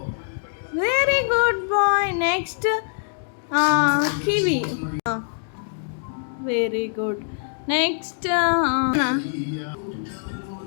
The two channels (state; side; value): silent; right; digital silence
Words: Very good boy. Next kiwi. Very good. Next